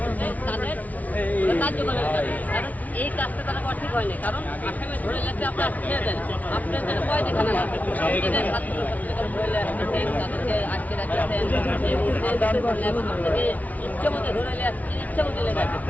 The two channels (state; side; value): late; right; 0.074 ms